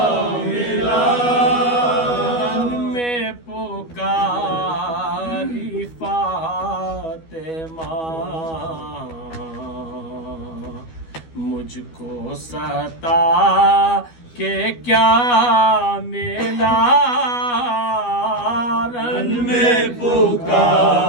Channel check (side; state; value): right; late; 12 ms